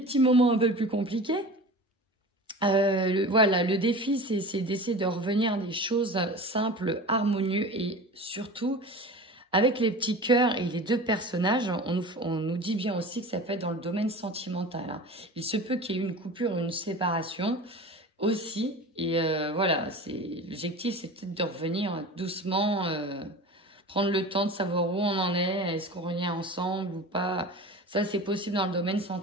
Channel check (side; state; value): both; normal; correlation 0.35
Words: moments un peu plus compliqués. Voilà, le défi, c'est d'essayer de revenir à des choses simples, harmonieuses et surtout, avec les petits cœurs et les deux personnages, on nous dit bien aussi que ça peut être dans le domaine sentimental. Hein. Il se peut qu'il y ait une coupure, une séparation aussi. Et voilà, l'objectif, c'est peut-être de revenir doucement, prendre le temps de savoir où on en est, est-ce qu'on revient ensemble ou pas. Ça, c'est possible dans le domaine